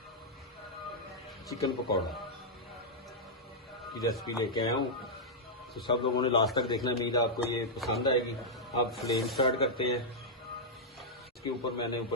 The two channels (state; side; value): normal; both; correlation -0.07